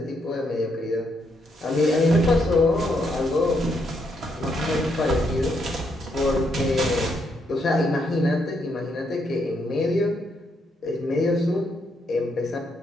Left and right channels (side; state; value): both; normal; correlation 0.76